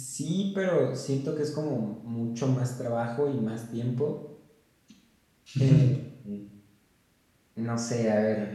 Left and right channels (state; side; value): identical; both; correlation 1.00